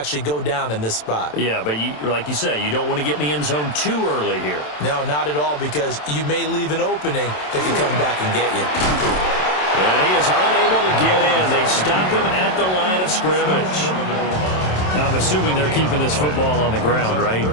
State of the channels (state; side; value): late; right; 27 ms